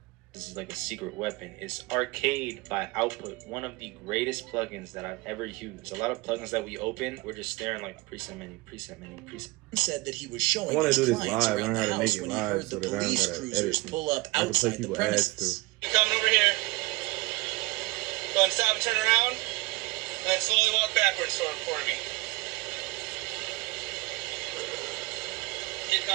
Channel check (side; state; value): left; quieter; 22.1 dB